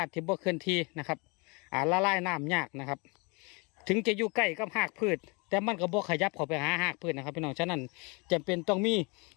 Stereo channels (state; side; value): quieter; right; 30.0 dB